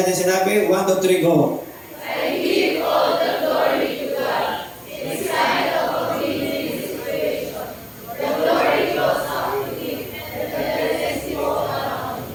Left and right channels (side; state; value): both; identical; correlation 1.00